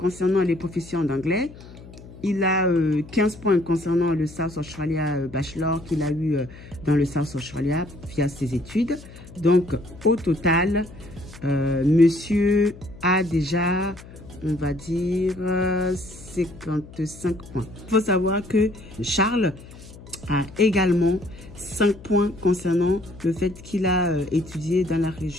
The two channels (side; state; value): left; noise; hum, 18 dB below the sound